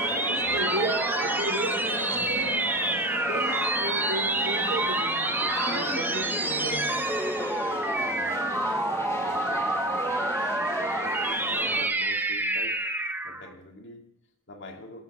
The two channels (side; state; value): both; normal; correlation 0.25